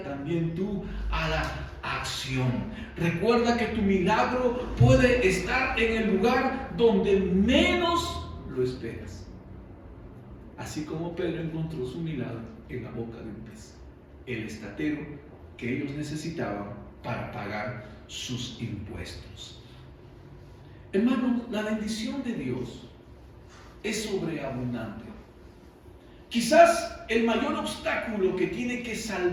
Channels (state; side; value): identical; both; correlation 1.00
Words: también tú a la acción. Recuerda que tu milagro puede estar en el lugar donde menos lo esperas. Así como Pedro encontró su milagro en la boca de un pez, el estatero que ellos necesitaban para pagar sus impuestos. Hermanos, la bendición de Dios es sobreabundante. Quizás el mayor obstáculo que tiene que